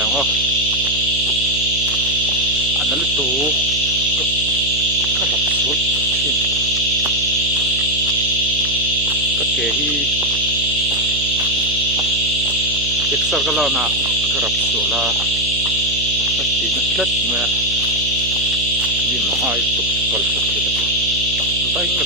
o an na lu tu ka rap sul thin ka ke hi exer ka la na ka rap sul la ka ti na tlat me di ma ai tu kal sa the bai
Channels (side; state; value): right; noise; hum, 9 dB below the sound